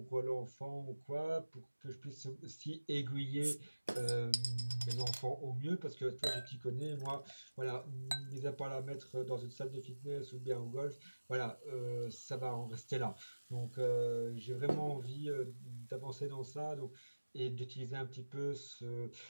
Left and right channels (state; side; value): inverted; both; correlation -1.00